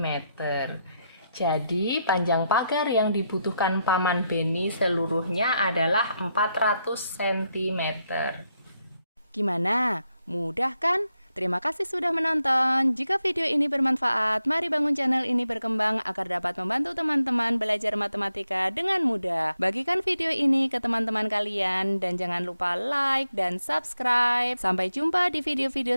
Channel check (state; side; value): inverted; both; correlation -0.82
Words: Jadi, panjang pagar yang dibutuhkan Paman Beni seluruhnya adalah 400 cm. Gimana? Mudah kan? Terima kasih sudah menonton. Jika video ini bermanfaat, mari bangun channel ini berkembang agar dapat membantu teman-teman belajar matematika dengan mudah. Bagikan video ini ke teman-teman kalian dan jangan lupa like dan subscribe. Sampai jumpa di